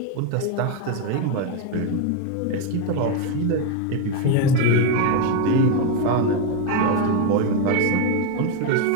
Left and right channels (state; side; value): different; both; correlation 0.02